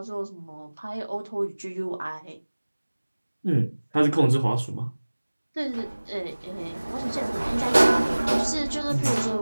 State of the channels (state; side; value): inverted; both; correlation -1.00